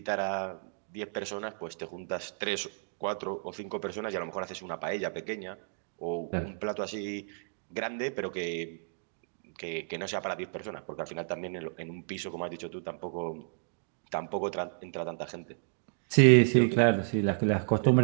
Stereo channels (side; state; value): left; silent; digital silence